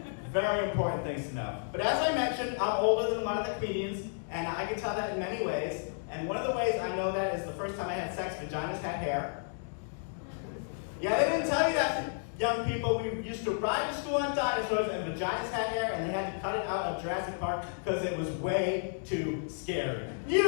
Very important things to know. But as I mentioned, I'm older than a lot of the comedians, and I can tell that in many ways. And one of the ways I know that is the first time I had sex, vaginas had hair. Yeah, they didn't tell you that, young people. We used to ride to school on dinosaurs, and vaginas had hair, and they had to cut it out of Jurassic Park because it was way too scary.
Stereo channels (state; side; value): silent; right; digital silence